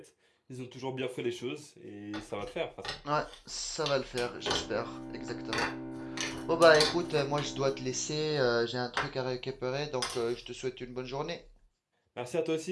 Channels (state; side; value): identical; both; correlation 1.00